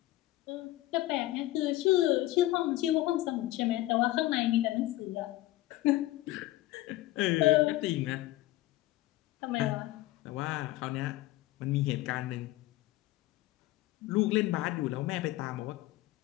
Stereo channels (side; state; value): right; quieter; 16.7 dB